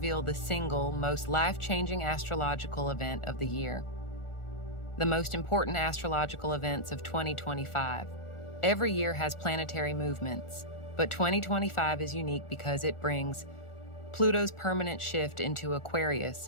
the single most life-changing astrological event of the year. The most important astrological events of 2025. Every year has planetary movements, but 2025 is unique because it brings Pluto's permanent shift into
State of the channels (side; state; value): right; late; 1.4 ms